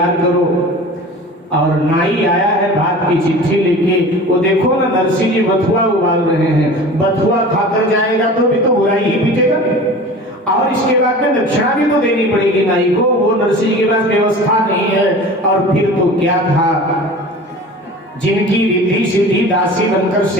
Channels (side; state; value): both; normal; correlation 0.38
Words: करो। और नाई आया है बात की चिट्ठी लेके। वो देखो ना नरसिंह जी बथुआ उबाल रहे हैं। बथुआ खाकर जाएगा तो भी तो बुराई ही पीटेगा, और इसके बाद में दक्षिणा भी तो देनी पड़ेगी नाई को। वो नरसिंह के पास व्यवस्था नहीं है। और फिर तो क्या था, जिनकी रिद्धि सिद्धि दासी बनकर